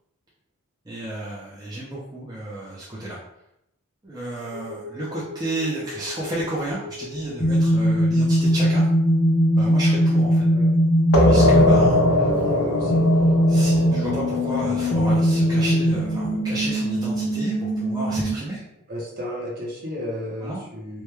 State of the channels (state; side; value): normal; both; correlation 0.63